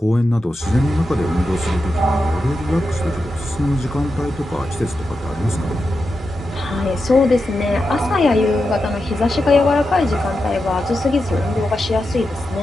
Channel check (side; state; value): both; normal; correlation 0.89